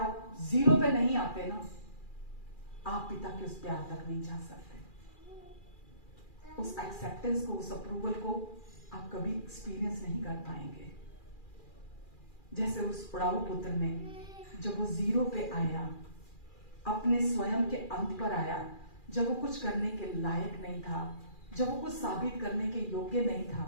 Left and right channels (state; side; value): late; right; 2.4 ms